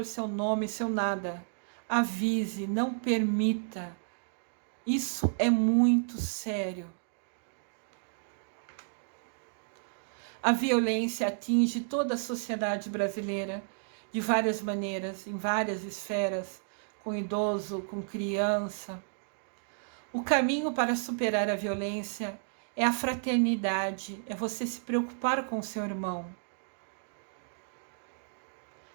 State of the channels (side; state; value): left; silent; digital silence